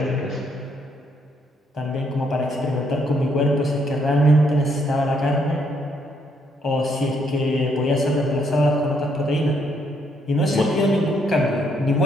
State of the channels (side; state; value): both; normal; correlation 0.72